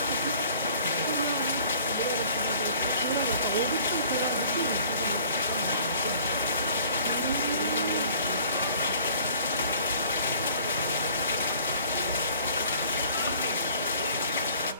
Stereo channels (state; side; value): inverted; both; correlation -0.52